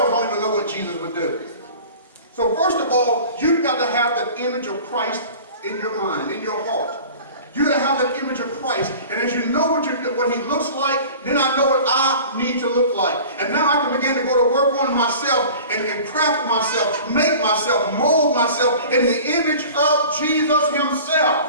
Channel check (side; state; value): both; inverted; correlation -0.41